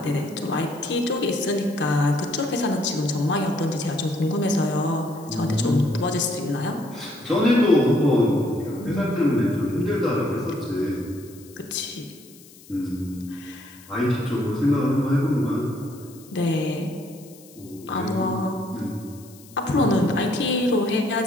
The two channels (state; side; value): noise; left; hiss, 23 dB below the sound